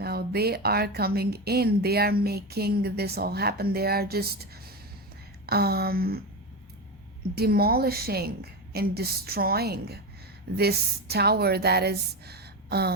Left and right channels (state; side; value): normal; both; correlation 0.18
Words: They are coming in. They are making this all happen. They are just um, demolishing and destroying this tower that is